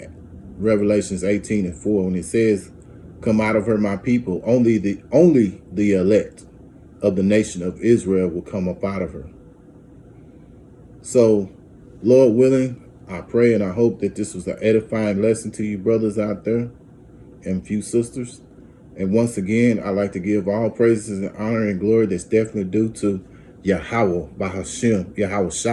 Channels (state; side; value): identical; both; correlation 1.00